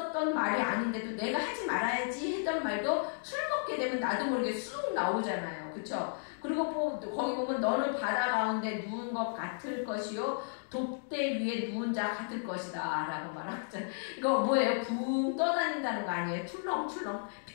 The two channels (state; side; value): silent; right; digital silence